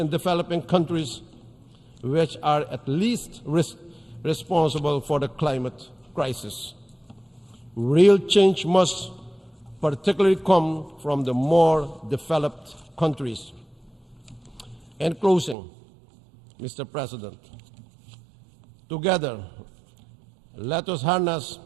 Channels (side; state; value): left; drops out; at 15.6 s